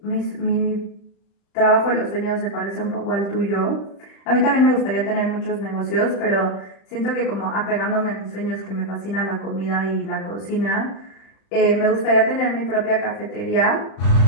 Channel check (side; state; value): right; late; 36 ms